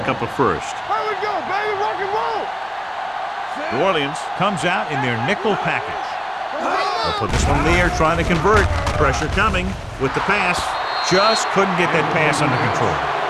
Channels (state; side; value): identical; both; correlation 1.00